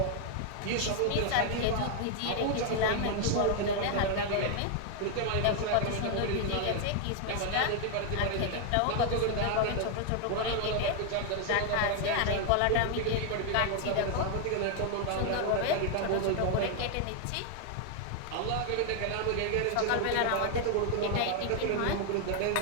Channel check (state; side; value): different; both; correlation 0.00